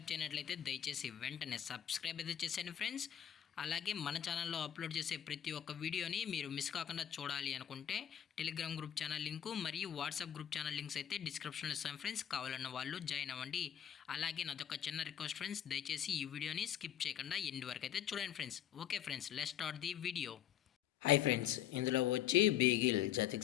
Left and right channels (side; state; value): right; quieter; 10.2 dB